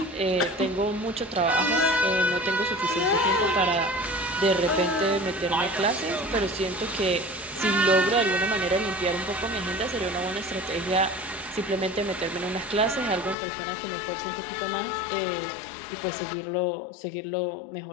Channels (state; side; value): drops out; right; at 13.4 s